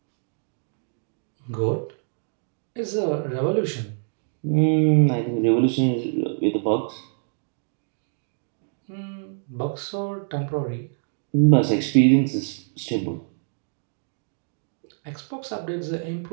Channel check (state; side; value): silent; left; digital silence